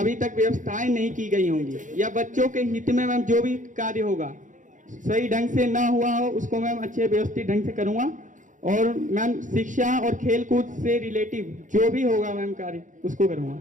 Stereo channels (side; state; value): left; late; 0.37 ms